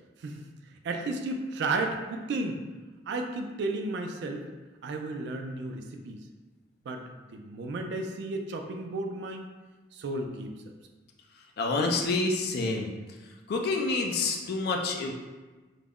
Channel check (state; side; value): normal; both; correlation 0.33